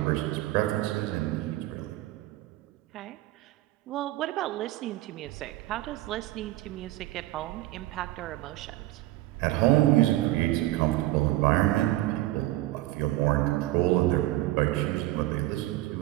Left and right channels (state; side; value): quieter; left; 17.0 dB